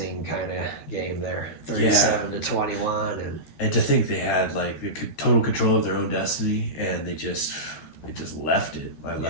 kind of game there. 37 to 21, And to think they had like total control of their own destiny, and they just left it. I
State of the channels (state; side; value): late; right; 13 ms